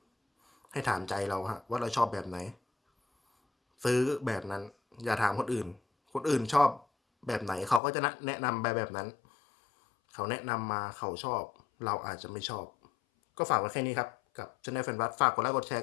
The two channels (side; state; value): right; drops out; at 7.8 s